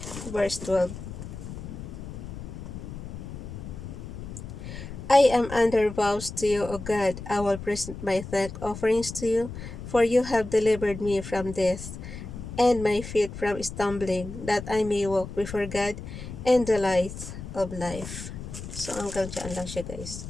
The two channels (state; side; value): noise; left; rumble, 10 dB below the sound